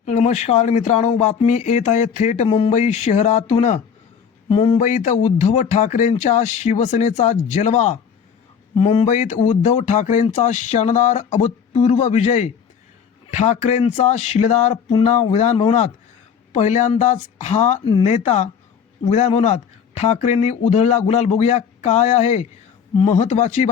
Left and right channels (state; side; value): quieter; right; 7.2 dB